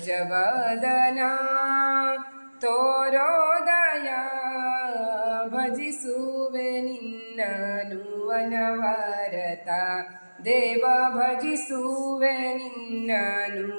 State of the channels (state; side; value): inverted; both; correlation -1.00